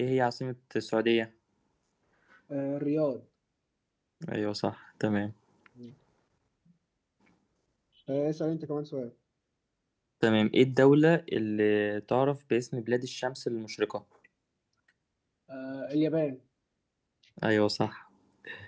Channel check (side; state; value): both; identical; correlation 1.00